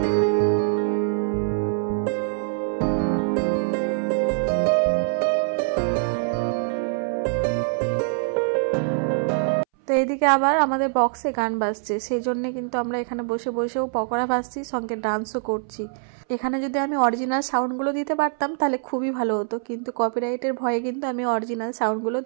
তো এদিকে আবার আমাদের বক্সে গান বাজছে, সেই জন্য কিন্তু আমরা এখানে বসে বসেও পকোড়া ভাজছি, সঙ্গে ডান্সও করছি। এখানে যদি আমি অরিজিনাল সাউন্ডগুলো দিতে পারতাম তাহলে খুবই ভালো হতো, কিন্তু কপিরাইটের ভয়ে কিন্তু আমি অরিজিনাল সাউন্ডগুলো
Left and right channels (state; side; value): silent; left; 61 dB below the other